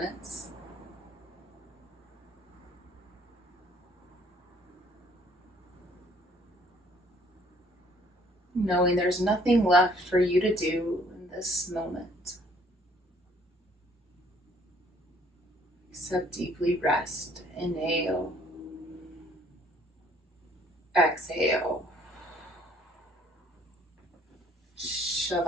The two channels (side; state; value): both; normal; correlation 0.61